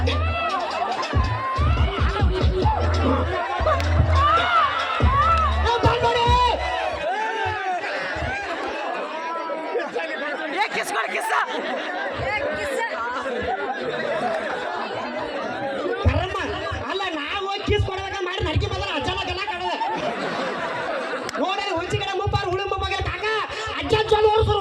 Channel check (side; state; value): both; identical; correlation 1.00